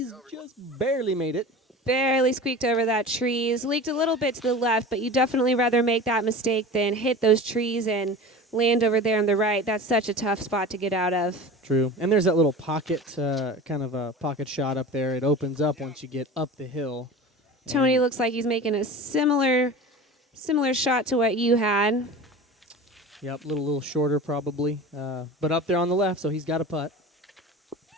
Just barely made it. Barely squeaked over that trees. Leaked a little bit to the left, but you definitely rather make that mistake than hit those trees and land over there on the right. That's such a tough spot to get out of. True. And there's that little pocket, kind of a pocket shot up there. It opens up once you get up the hill. Tony looks like he's making a similar shot to what you had. Yep, a little shorter probably, but up there on the left, so he's got a putt.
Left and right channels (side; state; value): both; normal; correlation 0.34